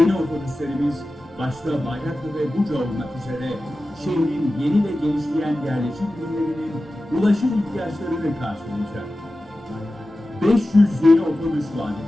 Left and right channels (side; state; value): both; normal; correlation 0.95